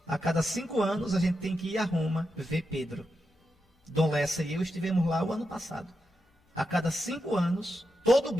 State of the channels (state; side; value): normal; both; correlation 0.87